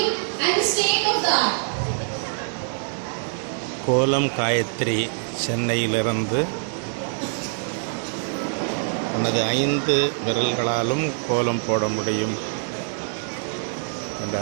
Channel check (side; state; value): left; silent; 62 dB below the other